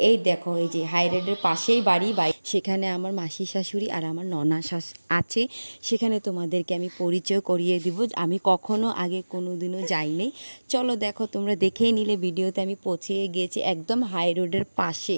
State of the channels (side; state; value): both; inverted; correlation -1.00